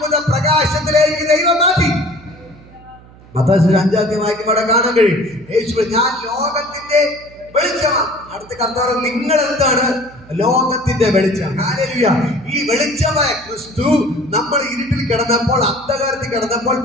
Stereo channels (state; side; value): noise; right; hum, 23 dB below the sound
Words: പ്രകാശത്തിലേക്ക് ദൈവം മാറ്റി. മത്തായി 5 വായിക്കുമ്പോൾ കാണാൻ കഴിയും, യേശു ഞാൻ ലോകത്തിന്റെ വെളിച്ചമാണ്. അടുത്ത കർത്താവ് നിങ്ങൾ എന്താണ്? ലോകത്തിന്റെ വെളിച്ചം. ഹല്ലേലൂയ. ഈ വെളിച്ചമായ ക്രിസ്തു നമ്മൾ ഇരുട്ടിൽ കിടന്നപ്പോൾ, അന്ധകാരത്തിൽ കിടന്നപ്പോൾ,